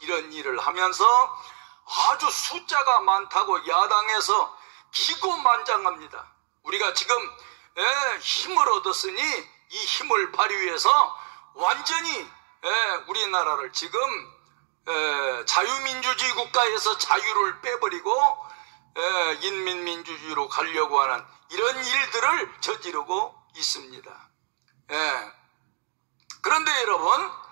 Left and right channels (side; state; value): left; silent; 56 dB below the other